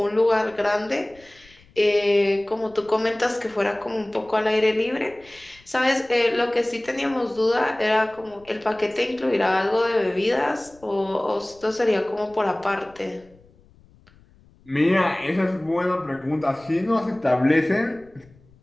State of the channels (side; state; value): left; noise; rumble, 28 dB below the sound